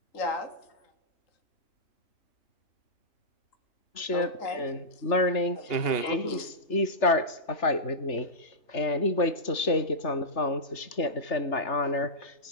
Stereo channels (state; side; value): late; right; 3.3 ms